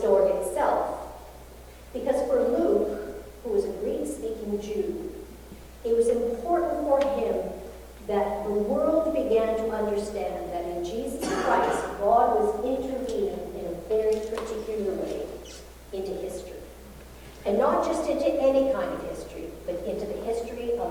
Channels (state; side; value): identical; both; correlation 1.00